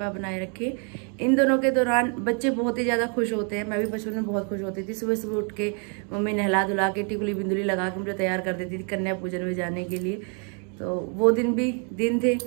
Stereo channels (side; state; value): left; quieter; 39.4 dB